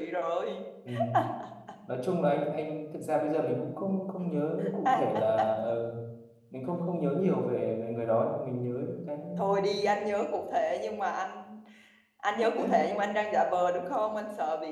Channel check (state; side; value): identical; both; correlation 1.00